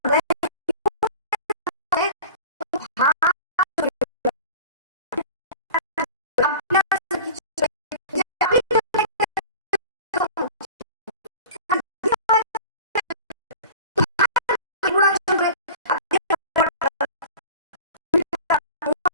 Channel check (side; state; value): both; inverted; correlation -0.37